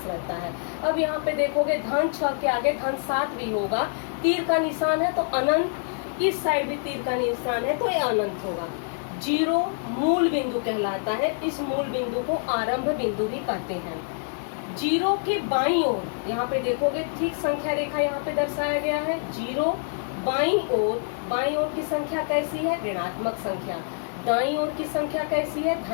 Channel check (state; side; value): silent; right; digital silence